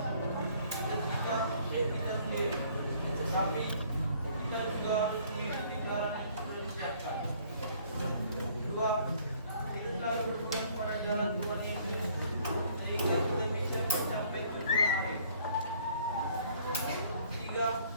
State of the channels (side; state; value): both; inverted; correlation -0.59